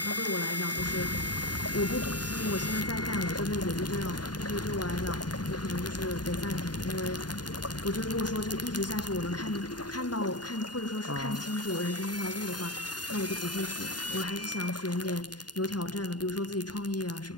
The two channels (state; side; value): late; right; 0.70 ms